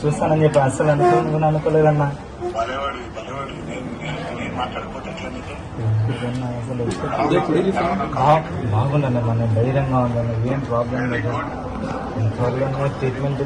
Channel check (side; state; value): both; identical; correlation 1.00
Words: చూస్తానని చెప్పి అసలు అనుకోలేదన్నా. బలేవాడి నేను మాట్లాడకపోతే ఎట్లా నీకు? అసలు బాగుండన్న, మనం ధైర్యంగా ఉందన్న, ఏం ప్రాబ్లం లేదు. త్వరగా ట్రీట్మెంట్